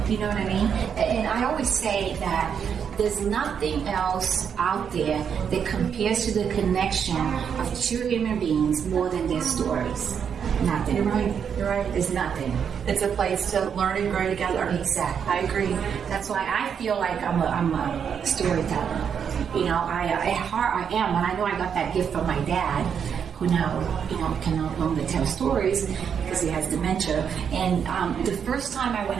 You know what I mean? And I always say that there's nothing else out there that compares to the connection of two human beings more than their stories. Nothing. You're right. You're right. There's nothing. It's a place to learn and grow together. Exactly. I agree. That's why I feel like I'm a storyteller. You know, at heart I am, and I know I got that gift from my dad, who now, can no longer tell stories because he has dementia. And the first time I went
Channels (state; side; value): quieter; left; 7.4 dB